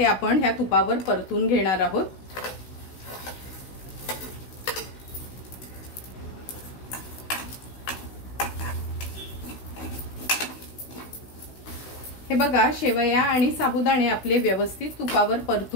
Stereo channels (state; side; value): late; right; 16 ms